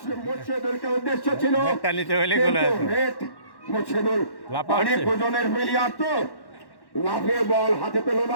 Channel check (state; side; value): late; right; 1.1 ms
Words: মুর্শিদুলকে উদ্দেশ্য ছিল, মুর্শিদুল অনেক ওজনের প্লেয়ার তো লাফিয়ে বল হাতে পেল